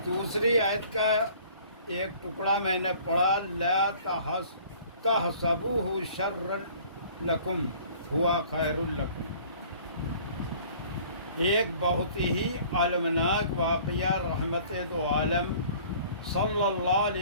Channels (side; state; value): both; inverted; correlation -0.51